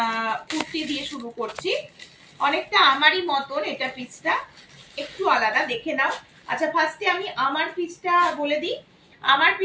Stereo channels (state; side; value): identical; both; correlation 1.00